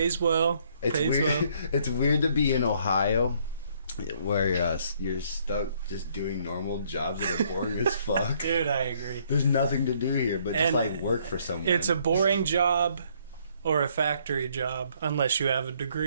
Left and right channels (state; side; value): inverted; both; correlation -0.66